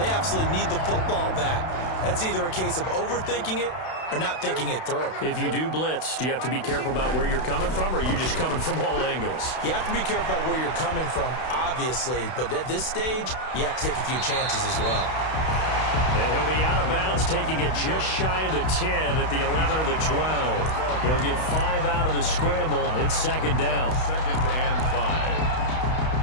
absolutely need the football back. That's either a case of overthinking it or not thinking it through. If you do blitz, do you have to be careful about where you're coming from, or are you just coming from all angles? You have to be careful about where you're coming from, obviously. But at this stage, you have to take a few chances as well. And he'll be out of bounds, taking it just shy of the 10 at the 11 or the 12. He'll get 5 out of the scramble. It's 2nd down. 2nd and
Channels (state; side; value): late; right; 32 ms